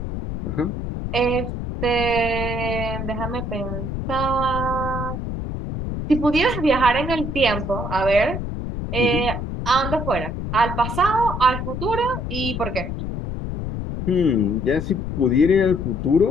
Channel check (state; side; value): noise; left; rumble, 5 dB below the sound